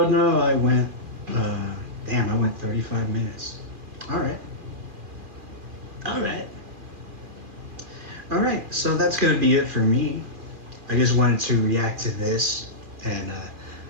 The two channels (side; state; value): left; late; 2.4 ms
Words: no, I went. Damn, I went 35 minutes. All right. All right. All right. So that's gonna be it for me. I just wanted to react to this and